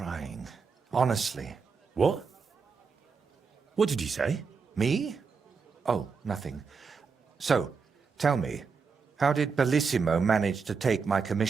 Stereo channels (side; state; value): left; quieter; 5.3 dB